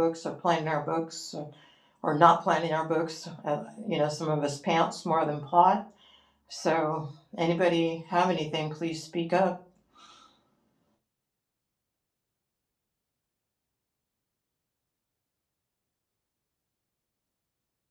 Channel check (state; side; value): identical; both; correlation 1.00